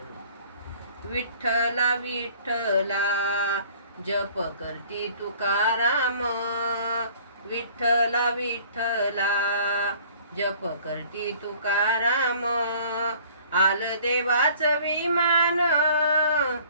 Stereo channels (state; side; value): inverted; both; correlation -0.52